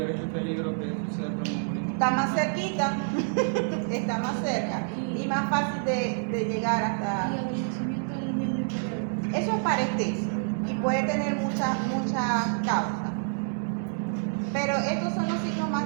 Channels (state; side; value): silent; left; 59 dB below the other